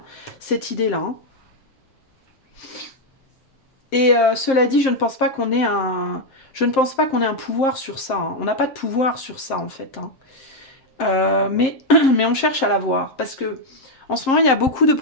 cette idée-là. Hein. Et cela dit, je ne pense pas qu'on ait je ne pense pas qu'on ait un pouvoir sur ça. Hein. On n'a pas de pouvoir sur ça, en fait. Hein. Mais, mais on cherche à l'avoir. Parce que en ce moment, il y a beaucoup de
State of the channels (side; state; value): right; late; 7.6 ms